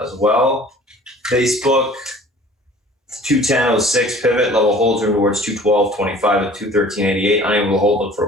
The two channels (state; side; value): normal; both; correlation 0.48